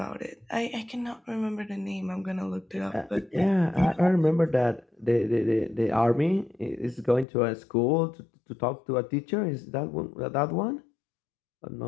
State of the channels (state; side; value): drops out; right; at 7.2 s